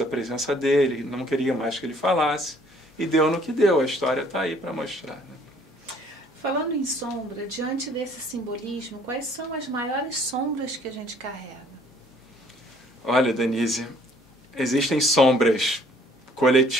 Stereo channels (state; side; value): normal; both; correlation 0.60